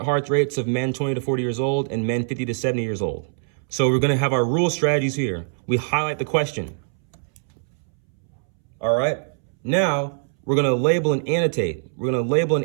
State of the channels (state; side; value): silent; left; 63 dB below the other